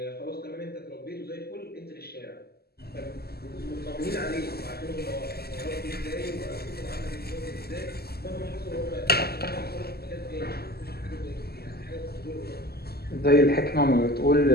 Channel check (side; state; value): right; late; 0.46 ms